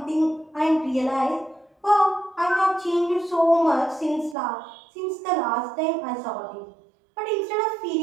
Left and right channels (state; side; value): drops out; left; at 4.4 s